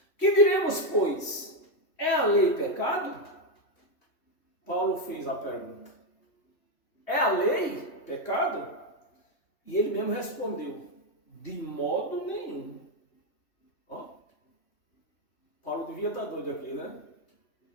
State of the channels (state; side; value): late; right; 3.1 ms